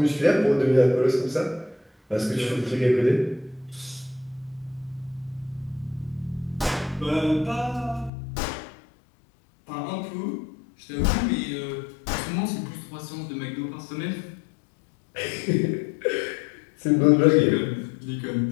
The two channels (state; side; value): drops out; right; at 8.1 s